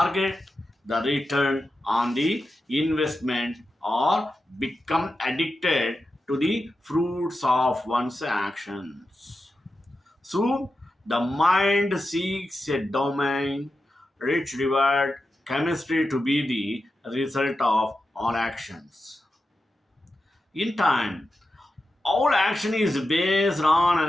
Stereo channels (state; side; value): normal; both; correlation 0.90